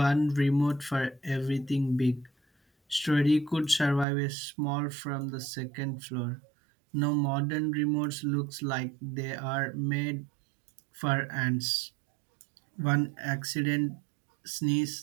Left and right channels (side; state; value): left; drops out; at 4.0 s